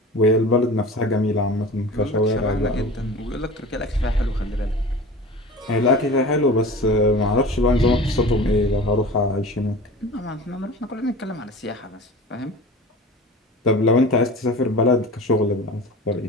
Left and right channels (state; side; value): normal; both; correlation 0.37